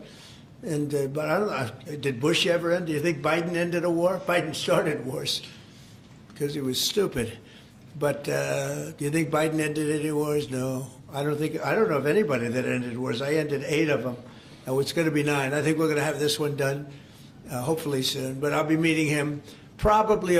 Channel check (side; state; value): both; identical; correlation 1.00